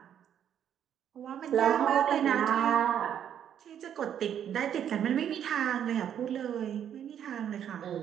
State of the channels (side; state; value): left; quieter; 9.4 dB